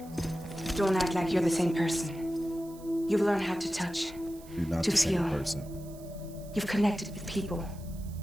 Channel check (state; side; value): noise; right; hiss, 22 dB below the sound